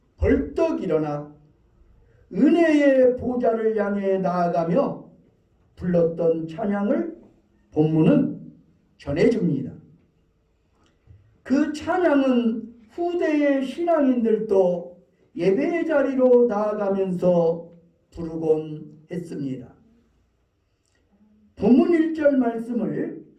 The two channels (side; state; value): both; identical; correlation 1.00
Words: 벌떡 일어나 은혜의 보좌를 향해 나아가며 불렀던 찬양을 본문은 전해줍니다. 그 찬양은 후대의 신앙인들도 예배의 자리로 나아가면서 부르곤 했습니다. 본문 1절 말씀을